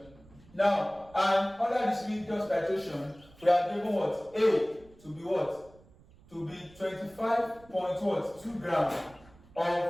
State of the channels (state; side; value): noise; right; rumble, 25 dB below the sound